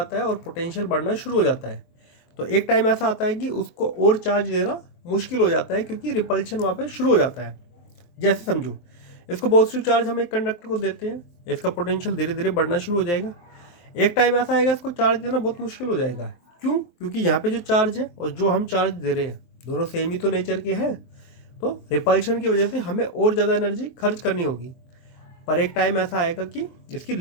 है और पोटेंशियल बढ़ना शुरू हो जाता है। तो एक टाइम ऐसा आता है कि उसको और चार्ज देना मुश्किल हो जाता है, क्योंकि रिपल्शन वहाँ पे शुरू हो जाता है। जैसे समझो, इसको पॉजिटिव चार्ज हम एक कंडक्टर को देते हैं, इसका पोटेंशियल धीरे धीरे बढ़ना शुरू हो जाएगा। एक टाइम ऐसा आएगा इसको चार्ज देना बहुत मुश्किल हो जाएगा। क्यों? क्योंकि यहाँ पे जो चार्ज है और जो हम चार्ज दे रहे हैं दोनों सेम ही तो नेचर के हैं। तो रिपल्शन की वजह से हमें और ज़्यादा एनर्जी खर्च करनी होगी। पर एक टाइम ऐसा आएगा कि इसकी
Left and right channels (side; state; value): right; late; 23 ms